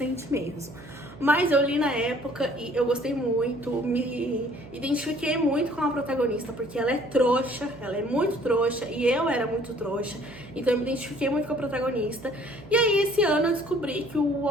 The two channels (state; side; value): noise; right; hum, 18 dB below the sound